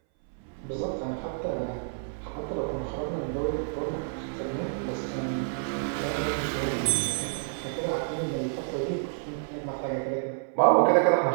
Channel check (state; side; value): silent; left; 59 dB below the other